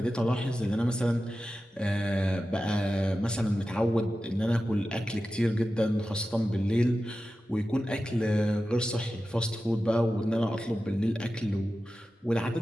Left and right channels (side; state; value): both; normal; correlation 0.93